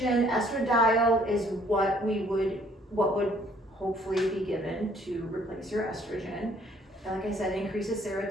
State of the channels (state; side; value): normal; both; correlation 0.61